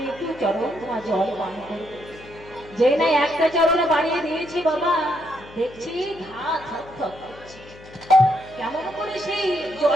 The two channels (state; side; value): noise; left; hum, 20 dB below the sound